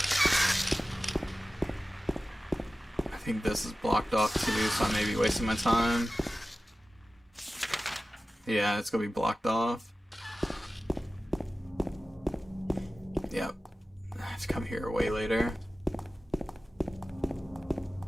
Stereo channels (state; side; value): normal; both; correlation 0.96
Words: I think this is blocked off too, so I may be wasting my time. Yeah, it's gonna be blocked off. Yep. I have to come here way later.